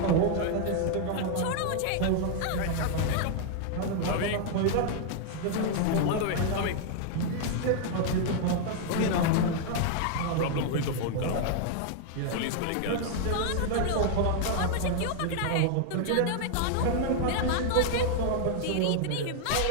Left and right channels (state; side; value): different; both; correlation 0.00